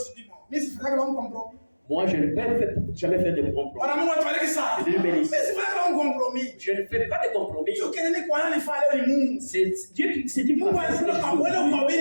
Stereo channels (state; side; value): inverted; both; correlation -1.00